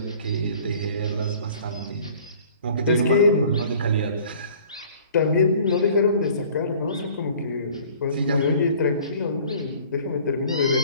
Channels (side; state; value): both; inverted; correlation -0.51